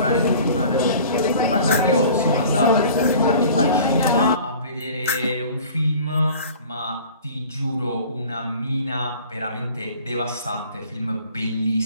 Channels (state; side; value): inverted; both; correlation -0.46